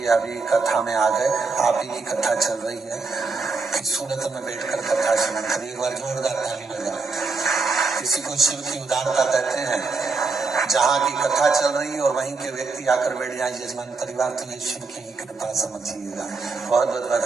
अभी कथा में आ गए। आप ही की कथा चल रही है कि सूरत में बैठकर कथा सुनी। कभी एक बार जोरदार ताली बजाओ। किसी को शिव की उदारता कहते हैं। जहाँ की कथा चल रही है और वहीं के व्यक्ति आकर बैठ जाए यजमान परिवार, तो ये शिव की कृपा समझिएगा। बहुत बहुत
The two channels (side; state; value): left; quieter; 4.3 dB